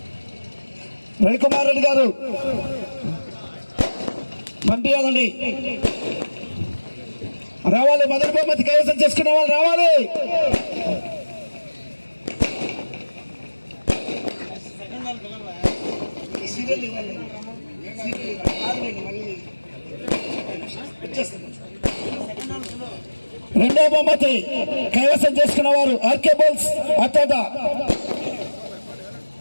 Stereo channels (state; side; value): inverted; both; correlation -1.00